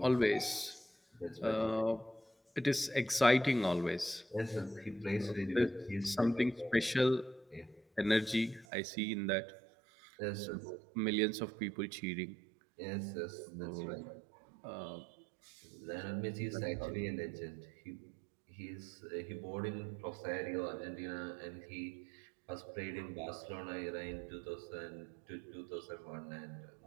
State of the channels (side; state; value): left; drops out; at 8.7 s